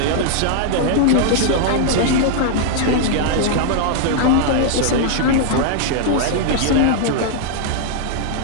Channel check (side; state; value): both; different; correlation -0.01